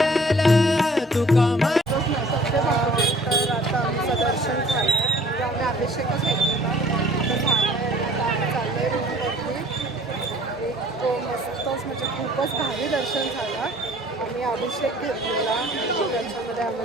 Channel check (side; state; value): both; normal; correlation 0.53